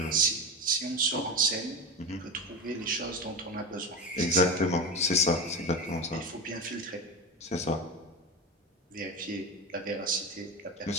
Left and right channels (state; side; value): normal; both; correlation 0.22